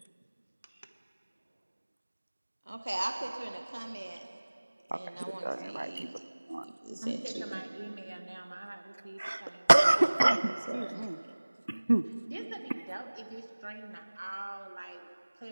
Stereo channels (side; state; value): both; inverted; correlation -1.00